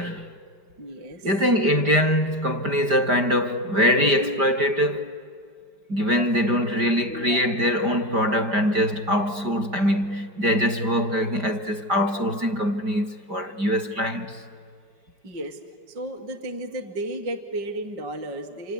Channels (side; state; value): left; late; 5.0 ms